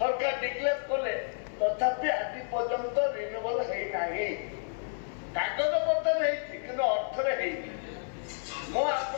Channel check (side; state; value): right; silent; 56 dB below the other